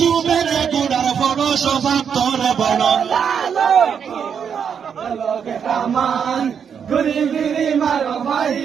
গুড়ার বড় স্বভাব তোর বড়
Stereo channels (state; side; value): quieter; left; 7.3 dB